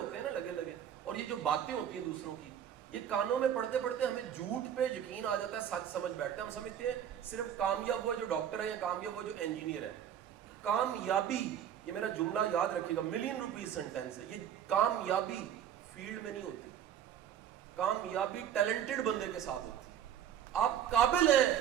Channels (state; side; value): quieter; left; 9.7 dB